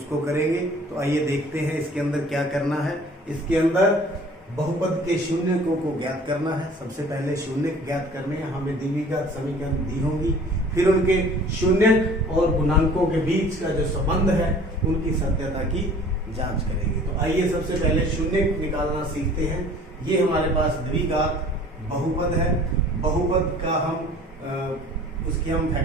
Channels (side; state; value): both; normal; correlation 0.49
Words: करेंगे। तो आइए देखते हैं इसके अंदर क्या करना है। इसके अंदर बहुपद के शून्यकों को ज्ञात करना है। सबसे पहले शून्यक ज्ञात करने हैं, हमें द्विघात समीकरण दी होंगी, फिर उनके शून्यक और गुणांकों के बीच का जो संबंध है उनकी सत्यता की जांच करेंगे। तो आइए सबसे पहले शून्यक निकालना सीखते हैं। ये हमारे पास द्विघात बहुपद है। बहुपद का हम उसकी हम